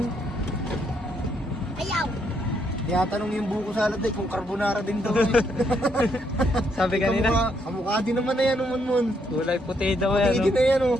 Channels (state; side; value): normal; both; correlation 0.74